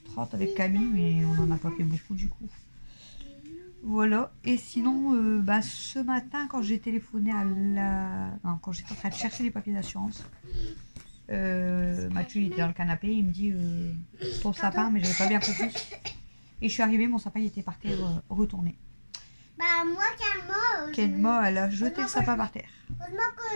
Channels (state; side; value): inverted; both; correlation -1.00